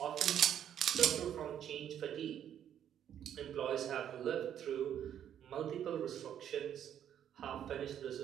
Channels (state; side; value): quieter; left; 9.9 dB